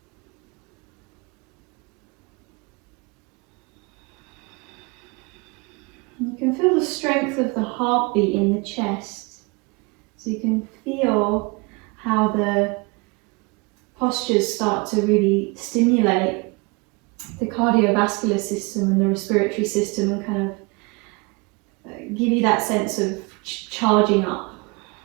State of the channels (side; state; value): left; quieter; 28.3 dB